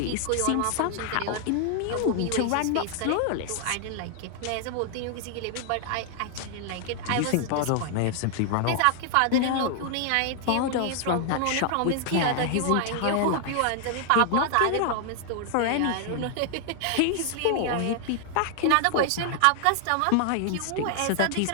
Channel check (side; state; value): both; different; correlation 0.00